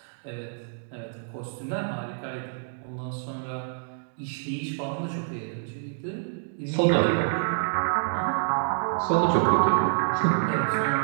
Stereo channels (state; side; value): silent; left; digital silence